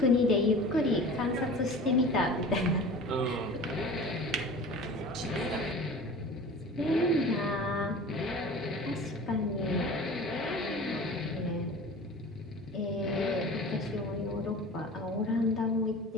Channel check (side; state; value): both; normal; correlation 0.39